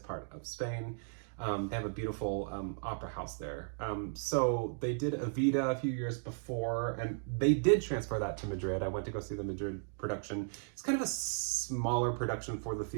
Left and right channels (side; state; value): left; silent; digital silence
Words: of Spain. They have a beautiful opera house there. So they did Evita a few years before, and they did transfer that to Madrid. I went to go see the Madrid production. It's kind of a smaller production for the